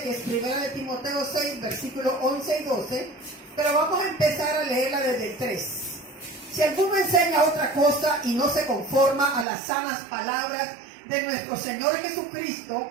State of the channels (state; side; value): drops out; left; at 9.5 s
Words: que es 1 de Timoteo 6, versículos 11 y 12, pero vamos a empezar a leerla desde el 3. Si alguno enseña otra cosa y no se conforma a las sanas palabras de nuestro Señor